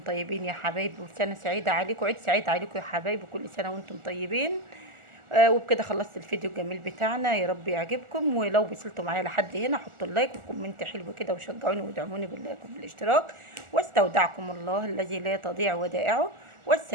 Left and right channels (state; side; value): late; left; 1.4 ms